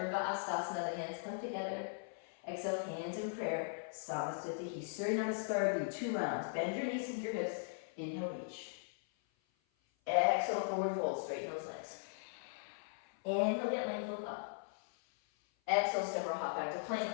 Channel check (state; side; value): silent; right; 52 dB below the other